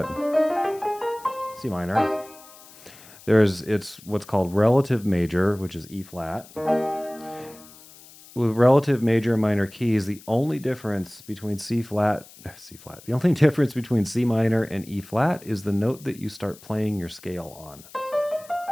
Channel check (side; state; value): left; noise; hiss, 21 dB below the sound